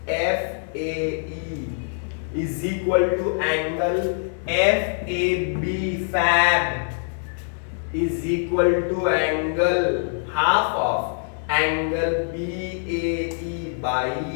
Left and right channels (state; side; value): silent; right; digital silence